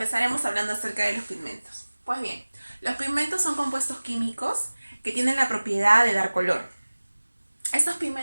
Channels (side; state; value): both; inverted; correlation -1.00